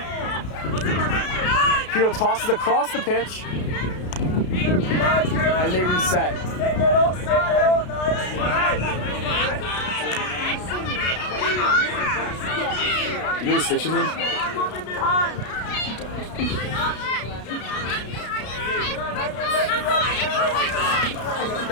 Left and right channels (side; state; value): right; late; 33 ms